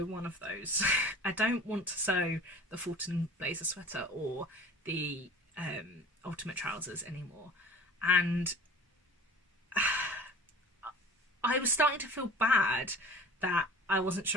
one of those. I don't want to sew the Fulton blazer sweater or the ultimate trousers anymore. And I was starting to feel bad that I wasn't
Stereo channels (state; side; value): normal; both; correlation 0.41